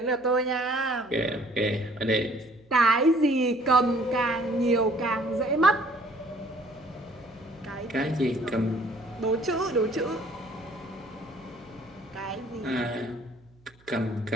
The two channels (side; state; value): right; noise; hum, 30 dB below the sound